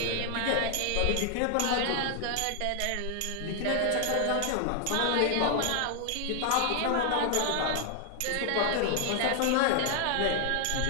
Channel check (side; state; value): both; different; correlation 0.00